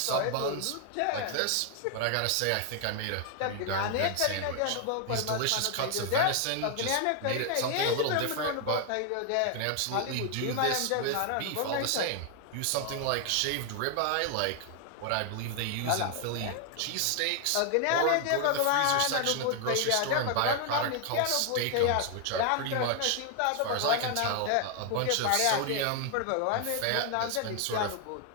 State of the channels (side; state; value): both; different; correlation 0.00